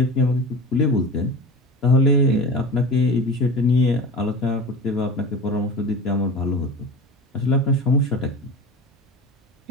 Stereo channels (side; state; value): both; normal; correlation 0.33